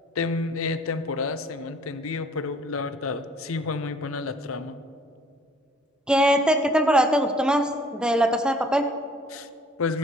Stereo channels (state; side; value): normal; both; correlation 0.56